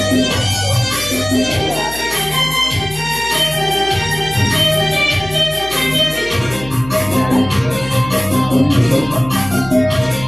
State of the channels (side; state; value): left; noise; hum, 16 dB below the sound